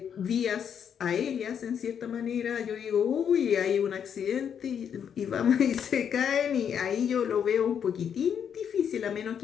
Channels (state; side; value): quieter; right; 8.0 dB